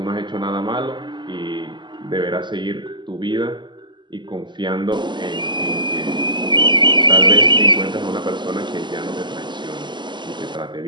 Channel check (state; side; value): late; left; 0.22 ms